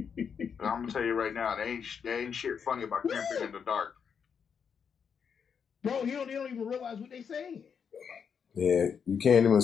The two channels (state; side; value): quieter; right; 6.9 dB